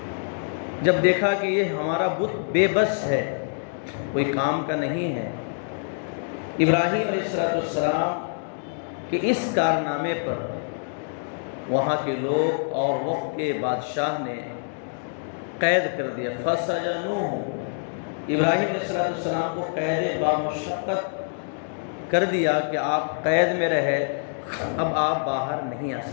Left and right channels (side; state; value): right; silent; digital silence